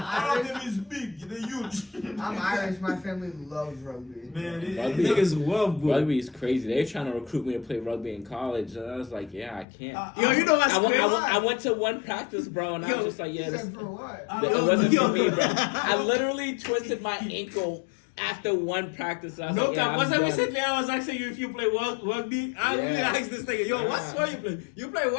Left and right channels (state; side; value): drops out; right; at 9.7 s